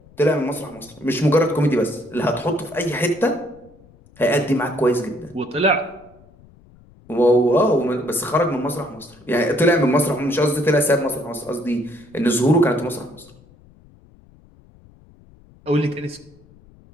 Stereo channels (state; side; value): noise; left; rumble, 26 dB below the sound